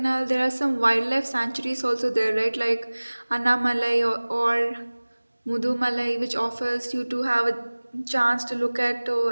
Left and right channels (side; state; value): both; inverted; correlation -1.00